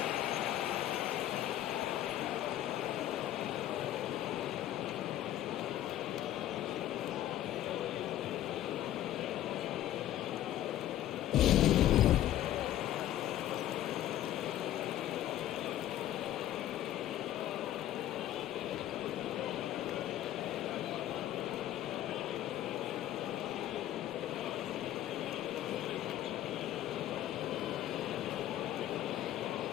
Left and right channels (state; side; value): quieter; right; 12.8 dB